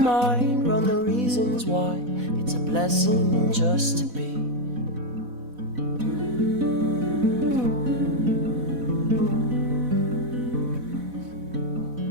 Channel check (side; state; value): left; late; 4.1 ms